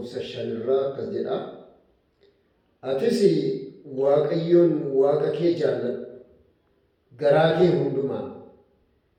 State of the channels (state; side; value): identical; both; correlation 1.00